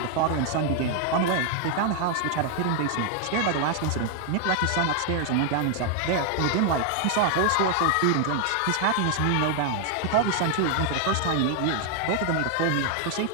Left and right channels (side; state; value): both; different; correlation 0.00